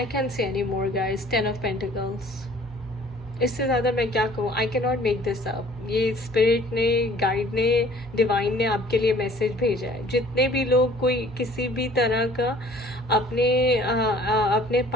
I can't say any more, guys. 10 of Pentacles. इससे ज़्यादा मैं क्या कहूँ. I can not make this up. ये spirit ने, guide ने, divine ने आपके लिए मैसेज भेजा है. जितने भी लोग कोई किसी भी तरह का अपने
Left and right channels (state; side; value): normal; both; correlation 0.53